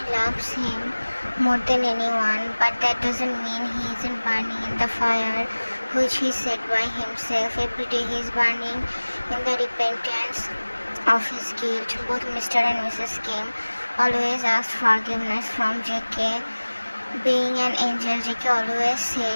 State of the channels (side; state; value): both; inverted; correlation -1.00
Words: loves him more than anyone, but that doesn't mean he isn't burning in the fire which he set by himself. Every day he is burning in the repentance of his guilt. Both Mr. and Mrs. Kim always asked forgiveness from Jackie. Being an angel, Jackie always